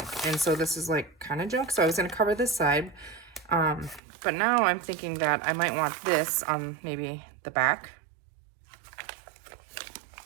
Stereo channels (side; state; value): left; drops out; at 4.0 s